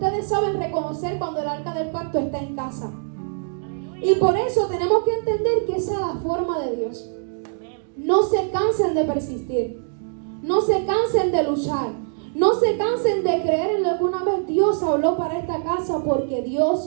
saben reconocer cuando el arca del pacto está en casa. Y por eso tenemos que entender que esa es la forma de Dios. No se cansen de persistir. No se cansen de luchar. No se cansen de creer en lo que una vez Dios habló para esta casa, porque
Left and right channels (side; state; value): left; silent; digital silence